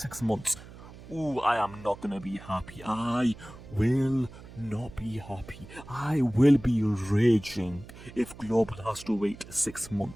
months, I am not gonna be happy. I will not be happy. I will be raging if Global has to wait 6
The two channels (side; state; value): right; noise; hum, 17 dB below the sound